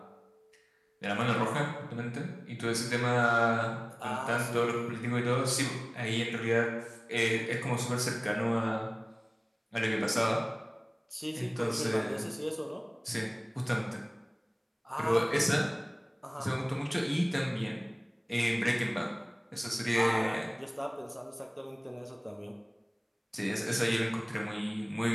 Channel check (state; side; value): identical; both; correlation 1.00